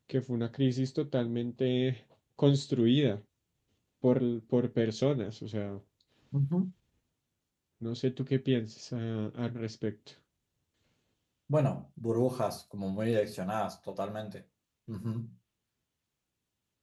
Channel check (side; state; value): both; identical; correlation 1.00